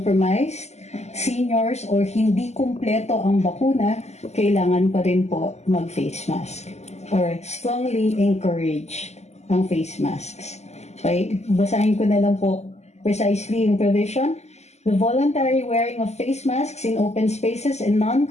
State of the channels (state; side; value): late; right; 0.32 ms